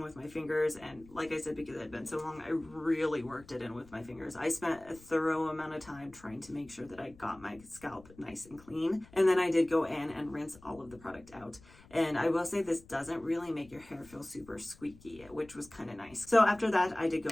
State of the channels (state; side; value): noise; left; rumble, 23 dB below the sound